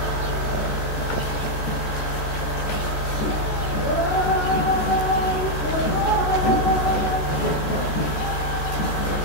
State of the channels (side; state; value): right; late; 13 ms